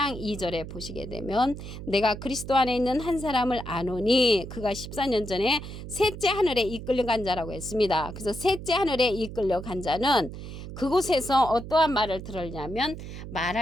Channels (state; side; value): noise; right; hum, 10 dB below the sound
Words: 2절에 보시게 되면 내가 그리스도 안에 있는 한 사람을 아노니 그가 14년 전에 셋째 하늘에 이끌려간 자라고 했습니다. 그래서 셋째 하늘에 이끌려간 자는 그곳에서 어떠한 말을 들었냐면